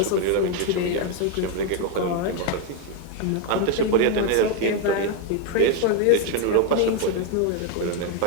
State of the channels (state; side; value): different; both; correlation 0.01